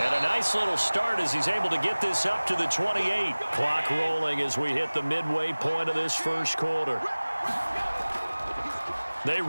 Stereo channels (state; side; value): inverted; both; correlation -1.00